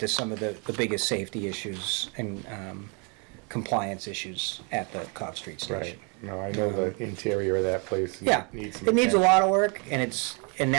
some of the biggest safety issues and compliance issues at the Cobb Street station. Right. No, I know the interior of that place. Yeah, needs some it needs a attention. lot of work, and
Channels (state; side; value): quieter; left; 32.6 dB